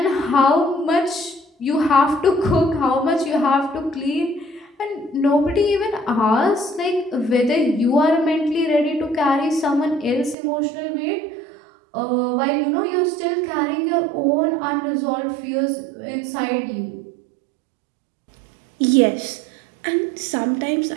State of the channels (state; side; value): drops out; left; at 10.4 s